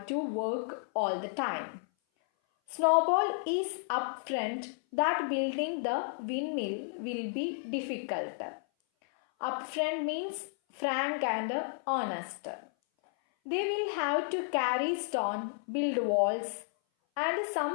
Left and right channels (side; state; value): right; silent; 56 dB below the other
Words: to work all the time. Snowball is upfront that building the windmill will be difficult. Upfront means frank and honest. They will have to carry stone, build walls, and